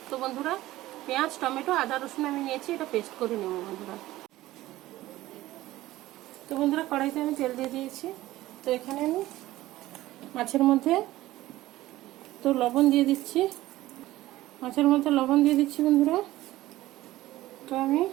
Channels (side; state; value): left; quieter; 16.4 dB